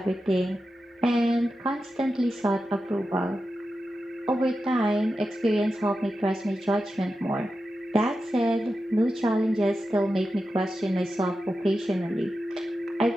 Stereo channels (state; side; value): normal; both; correlation 0.90